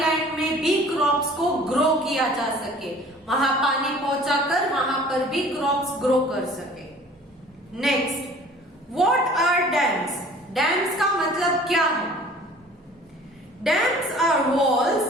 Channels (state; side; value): normal; both; correlation 0.49